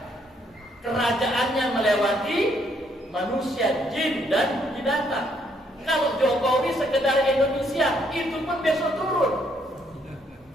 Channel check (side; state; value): both; normal; correlation 0.70